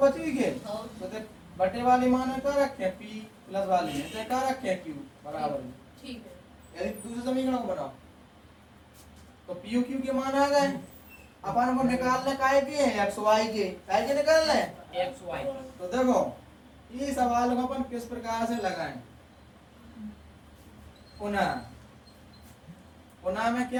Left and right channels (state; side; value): identical; both; correlation 1.00